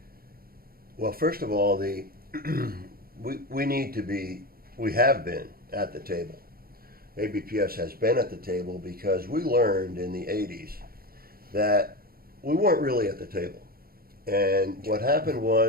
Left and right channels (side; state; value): left; late; 0.43 ms